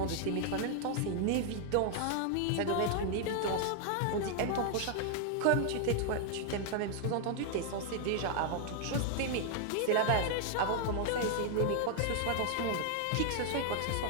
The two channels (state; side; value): different; both; correlation 0.00